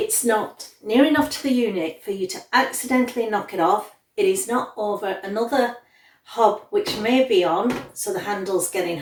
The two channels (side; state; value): both; identical; correlation 1.00